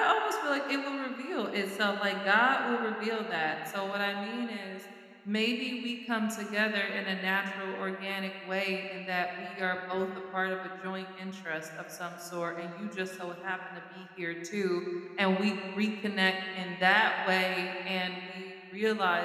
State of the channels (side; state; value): both; identical; correlation 1.00